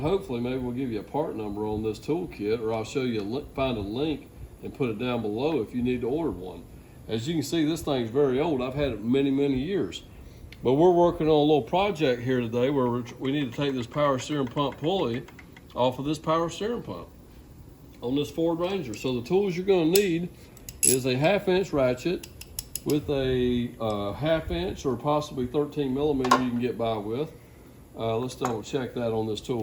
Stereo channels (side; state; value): both; identical; correlation 1.00